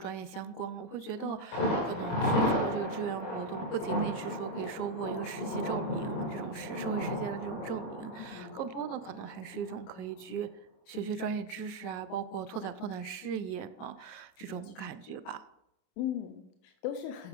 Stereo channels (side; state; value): right; late; 27 ms